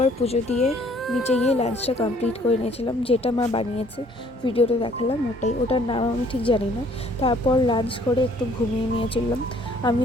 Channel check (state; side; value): normal; both; correlation 0.60